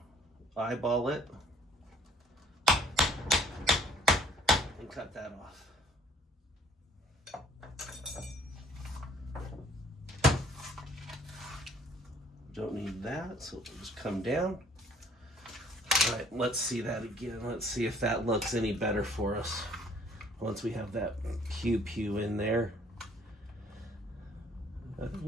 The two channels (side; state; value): both; normal; correlation 0.57